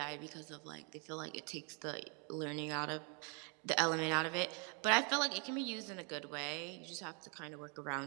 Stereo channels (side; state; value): left; quieter; 36.5 dB